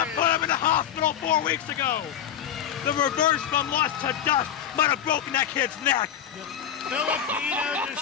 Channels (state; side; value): quieter; right; 9.6 dB